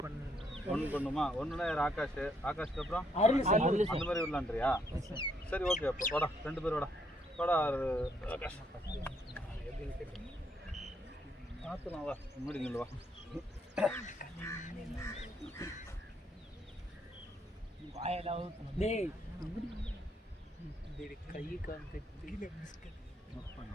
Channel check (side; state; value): both; normal; correlation 0.72